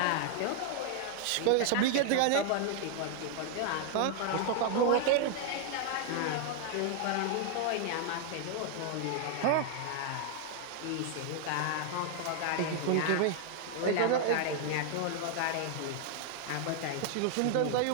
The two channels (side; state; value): both; different; correlation 0.00